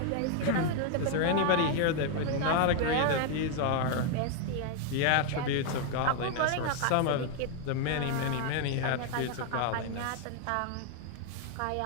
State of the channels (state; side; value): different; both; correlation 0.00